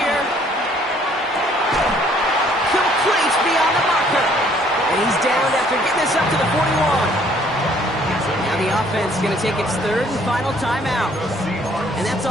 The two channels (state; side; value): normal; both; correlation 0.61